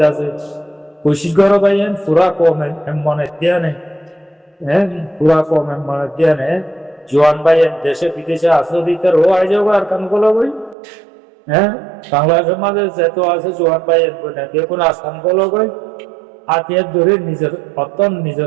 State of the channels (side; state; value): left; drops out; at 10.8 s